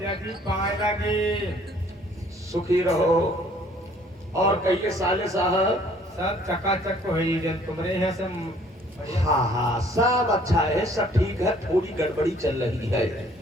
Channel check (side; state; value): both; normal; correlation 0.59